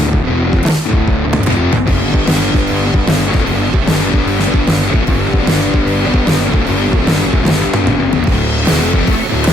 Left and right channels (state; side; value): normal; both; correlation 0.76